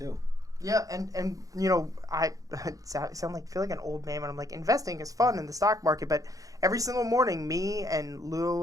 Yeah, and I feel like an old man when I'm like, investing is fun in the stock market, but every single morning, me and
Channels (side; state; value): left; late; 0.17 ms